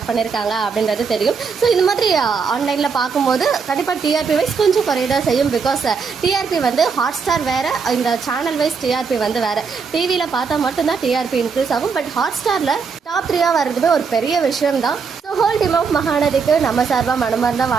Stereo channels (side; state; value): left; quieter; 5.5 dB